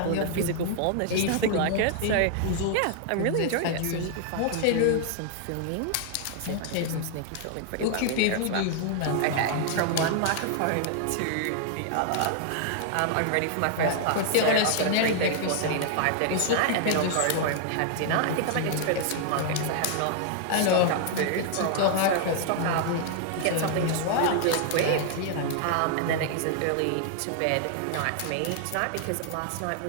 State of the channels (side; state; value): both; different; correlation 0.00